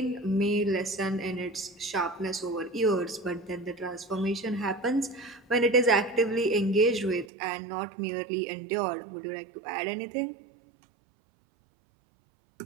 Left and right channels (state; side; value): drops out; left; at 7.3 s